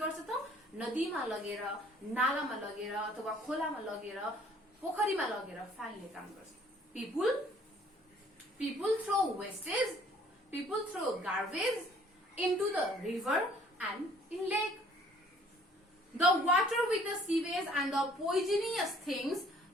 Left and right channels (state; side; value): normal; both; correlation 0.58